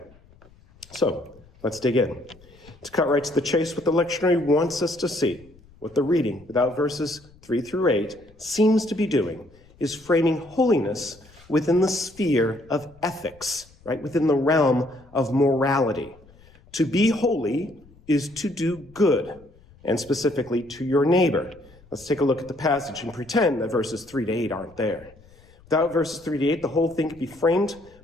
So, let's dig in. To cut right to the chase, what the lectionary wants us to see, what the reading, without verses 3 through 8, seems to be doing, is framing holiness within the sphere of ethics, right? Within the realm of morality. To be holy is to do good, and specifically to your neighbor. Let's take a look at the passage and pretend that verses 3 to 8 aren't there. Without verses 3 to 8, the whole thing could be framed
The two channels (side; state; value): left; noise; rumble, 26 dB below the sound